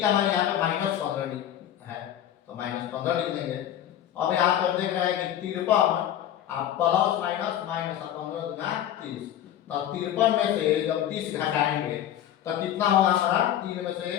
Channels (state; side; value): quieter; right; 11.3 dB